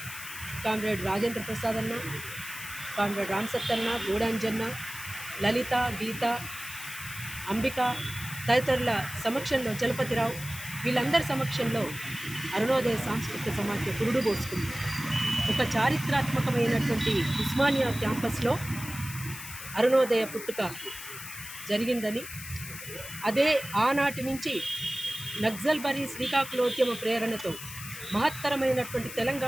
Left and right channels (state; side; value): noise; left; hiss, 11 dB below the sound